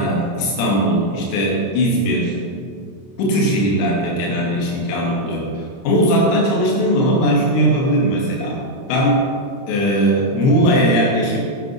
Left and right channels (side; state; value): right; late; 30 ms